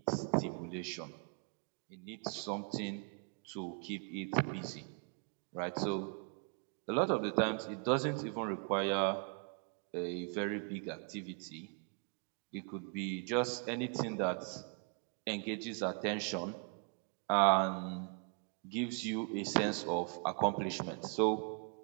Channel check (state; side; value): quieter; left; 39.6 dB